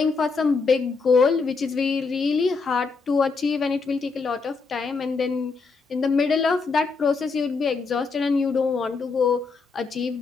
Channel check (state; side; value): quieter; right; 4.5 dB